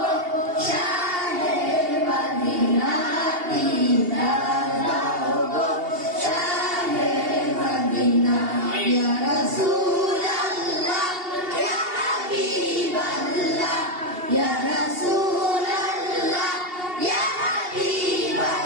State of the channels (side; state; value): left; late; 2.8 ms